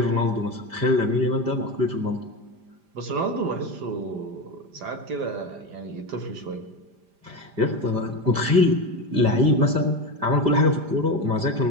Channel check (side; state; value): left; late; 5.0 ms